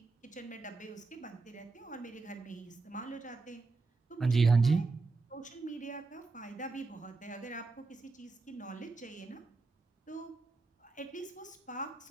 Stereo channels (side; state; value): left; quieter; 3.8 dB